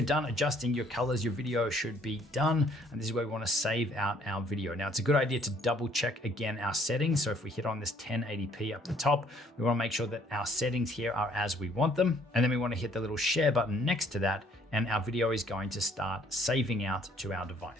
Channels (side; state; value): both; normal; correlation 0.62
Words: done adjusting your colors, your video should be done. And this is where we want to save out our video. Now it's a good idea to double check again our settings. So if we hit on this 1080p up the top, we want to make sure that our settings here are as we want them. And then we want to hit the little share button next to that, and our video is going to start saving out to our